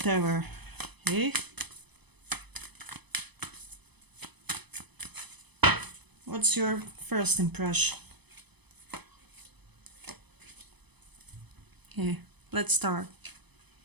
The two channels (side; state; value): left; late; 0.99 ms